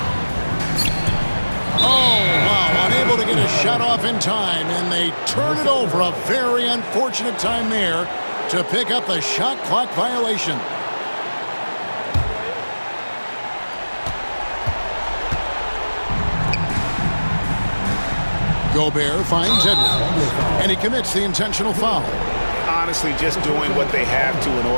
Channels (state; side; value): inverted; both; correlation -1.00